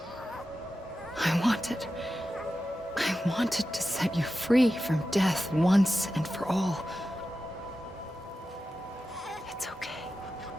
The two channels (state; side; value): normal; both; correlation 0.92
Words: I wanted to set you free from death once and for all. It's okay.